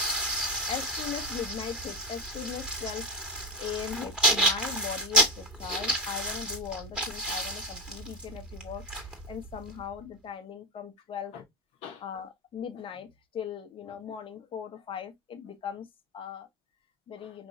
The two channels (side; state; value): both; normal; correlation 0.10